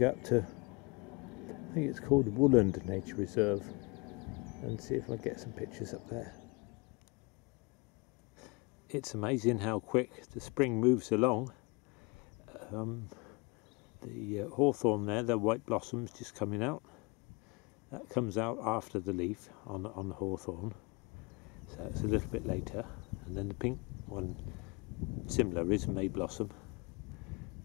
up to, I think it's called Woolland Nature Reserve, and see if I get some pictures up there. It's amazing how quick the spring moves along. The hawthorn there, the white blossoms just coming out. That comes out after the leaf on the hawthorn, so it's a little bit later. And then the pink one, similar, is May blossom,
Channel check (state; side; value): quieter; right; 28.6 dB